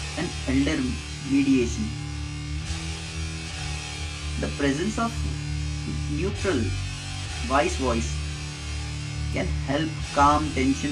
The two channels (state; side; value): identical; both; correlation 1.00